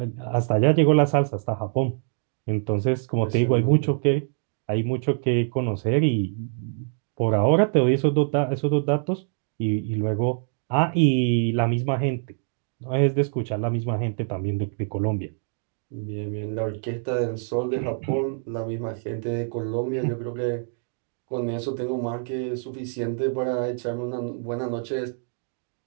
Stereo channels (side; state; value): left; silent; digital silence